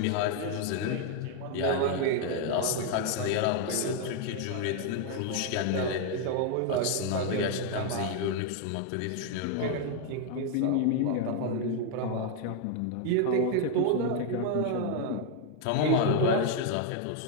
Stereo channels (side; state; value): both; different; correlation 0.00